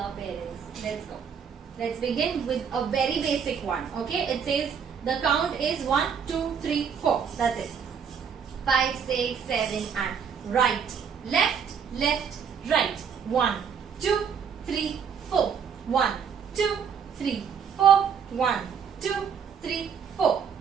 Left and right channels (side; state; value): left; quieter; 7.1 dB